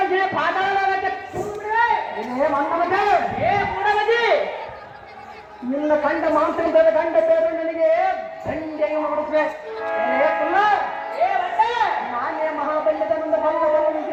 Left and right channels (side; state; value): both; identical; correlation 1.00